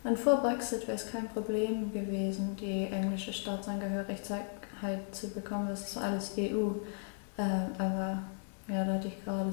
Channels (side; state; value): right; silent; 54 dB below the other